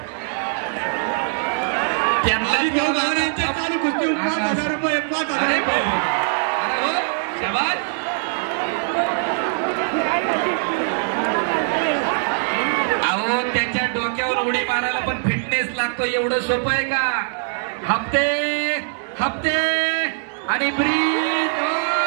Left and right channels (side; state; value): left; silent; digital silence